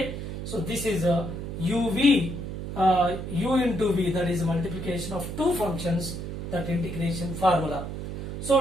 so this is a uv, u into v, that is multiplication of two functions, that integration formula.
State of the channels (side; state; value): right; noise; hum, 6 dB below the sound